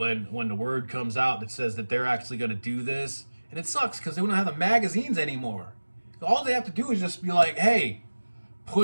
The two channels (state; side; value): inverted; both; correlation -1.00